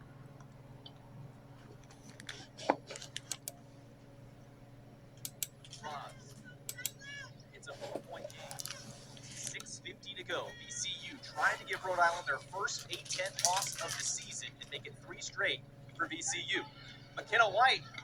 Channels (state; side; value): identical; both; correlation 1.00